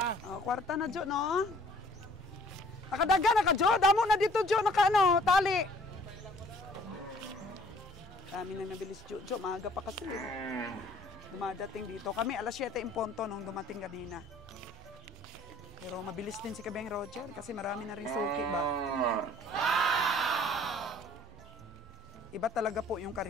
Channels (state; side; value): normal; both; correlation 0.56